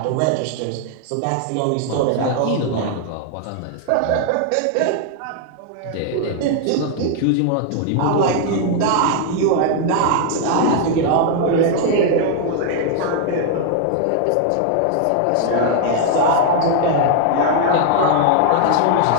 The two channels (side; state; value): both; different; correlation 0.00